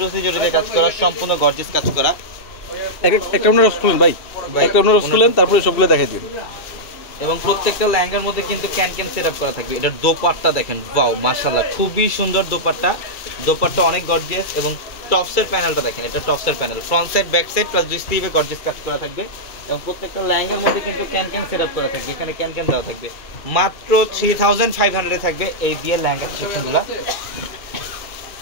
জরিতে কাজ করা, সম্পূর্ণ গর্জিয়াস কাজ করা। একটা আপনারা খুলেন ভাই, একটা আপনারা খুলেন, তারপরে সবগুলো দেখাই দিন। এবং প্রত্যেকটা লেহেঙ্গার মধ্যে কিন্তু ক্যান সেট আপ করা থাকবে। এটার দোপাট্টা দেখেন, ওয়াও মাশাআল্লাহ খুবই সুন্দর দোপাট্টা অনেক গর্জিয়াস। এবং টপসের প্যানেলটা দেখেন, এটা টপসের panel, front side back side plus দুই স্লিভে গর্জিয়াস কাজ করা থাকবে। এবং প্রত্যেকটা লেহেঙ্গার মধ্যে কিন্তু ক্যান সেট আপ করা থাকবে, এখানে ক্যান দেওয়া থাকবে। মাত্র 3500 থাকবে এই দিয়ে লেহেঙ্গার সেকশনগুলো।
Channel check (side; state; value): right; late; 2.3 ms